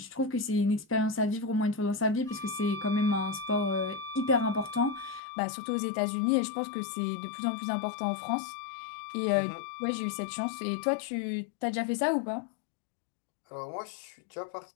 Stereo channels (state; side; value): drops out; right; at 5.2 s